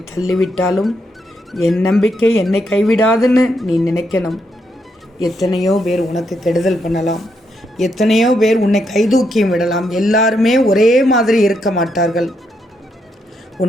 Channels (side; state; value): both; normal; correlation 0.79